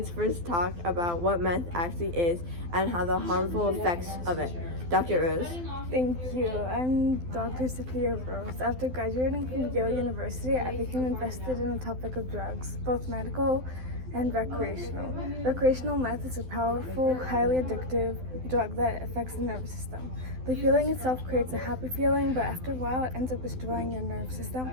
first talk about what meth actually is and how the harmful effects of it. Dr. Rose. Thank you. I'm Dr. Sophia Rose. After graduating from Yale University, I became invested in the topic of drugs, both medical and recreational. Recreational meth is a powerful, highly addictive drug that affects the nervous system. The feeling itself creates a happy feeling, but after a while it ends up destroying your nervous system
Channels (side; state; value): left; late; 12 ms